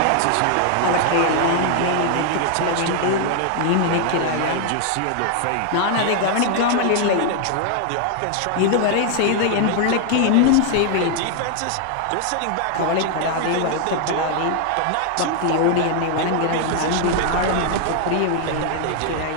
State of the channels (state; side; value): different; both; correlation 0.00